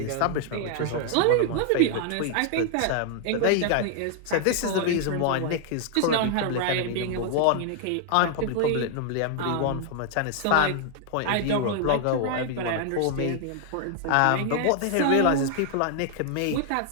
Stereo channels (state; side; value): different; both; correlation 0.00